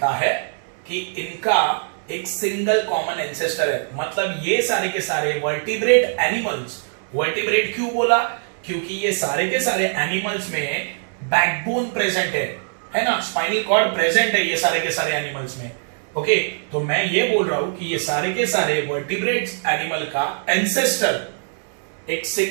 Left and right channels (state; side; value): silent; left; 64 dB below the other